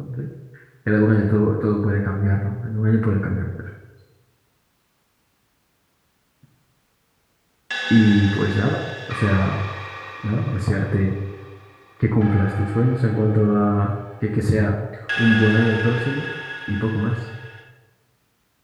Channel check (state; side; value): identical; both; correlation 1.00